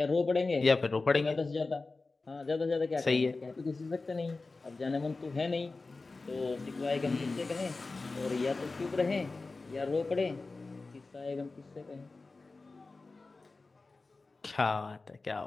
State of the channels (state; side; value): quieter; right; 3.7 dB